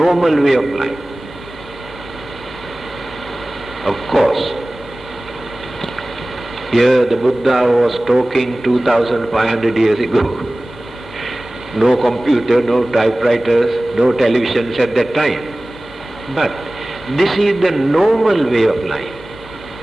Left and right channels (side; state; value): both; normal; correlation 0.98